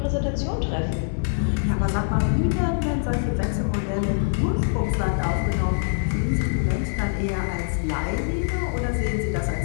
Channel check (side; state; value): right; silent; 60 dB below the other